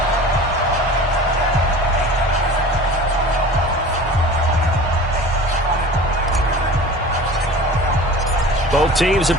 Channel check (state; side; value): normal; both; correlation 0.39